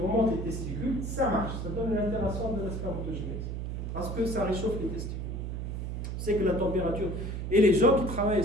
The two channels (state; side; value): noise; right; hum, 4 dB below the sound